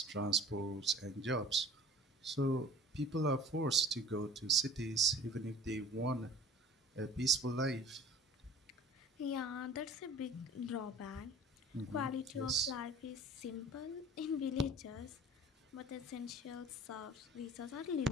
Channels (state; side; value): normal; both; correlation 0.43